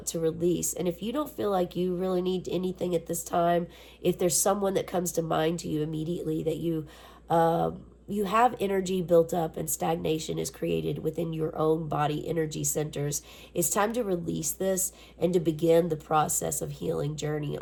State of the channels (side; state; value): both; identical; correlation 1.00